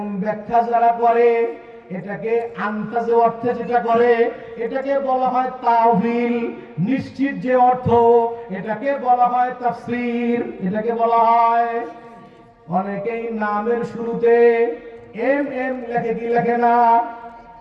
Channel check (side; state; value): both; identical; correlation 1.00